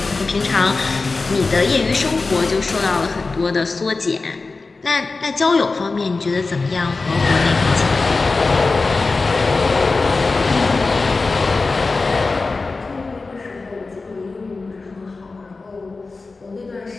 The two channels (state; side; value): quieter; right; 3.8 dB